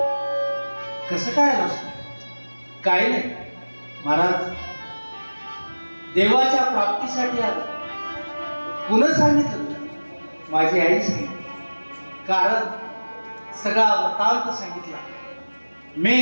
कसं काय आलं? काही नाही महाराज, देवाच्या प्राप्तीसाठी आलं. पुन्हा सांगितलं माझी आई सांगितलं, कारण सगळा वृत्तांत सांगितला. मी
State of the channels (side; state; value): both; inverted; correlation -1.00